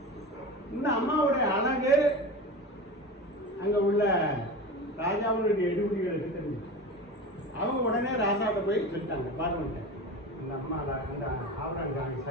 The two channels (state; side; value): normal; both; correlation 0.29